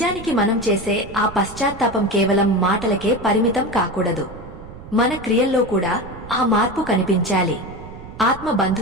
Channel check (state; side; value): noise; right; rumble, 15 dB below the sound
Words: మనం చేసే ఆ పశ్చాత్తాపం కేవలం మాటలకే పరిమితం కాకూడదు. మన క్రియల్లో కూడా ఆ మార్పు కనిపించాలి. ఆత్మ